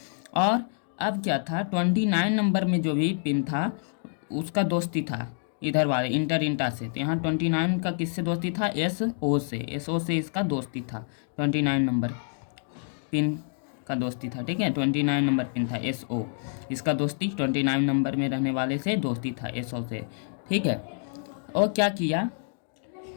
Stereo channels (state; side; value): silent; right; 60 dB below the other